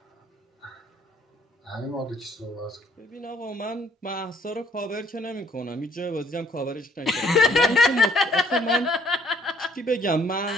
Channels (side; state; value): both; normal; correlation 0.62